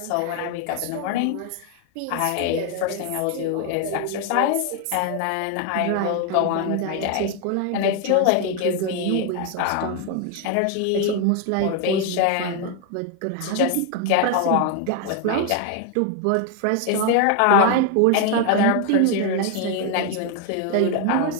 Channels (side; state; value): both; different; correlation 0.01